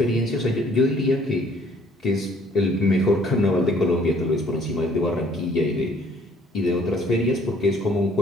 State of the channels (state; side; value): normal; both; correlation 0.59